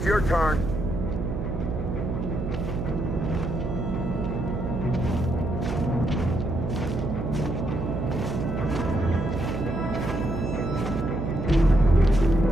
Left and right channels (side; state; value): right; noise; hum, 4 dB below the sound